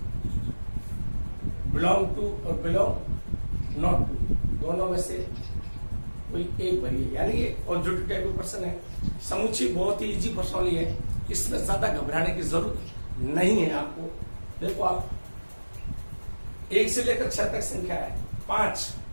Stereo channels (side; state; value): both; inverted; correlation -1.00